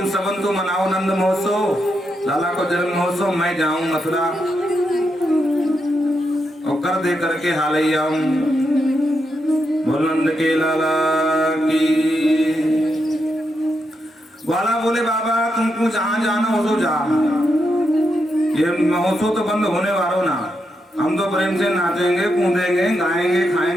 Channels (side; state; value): both; normal; correlation 0.83